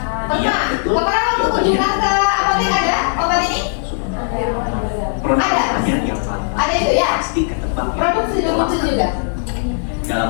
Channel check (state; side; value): silent; right; digital silence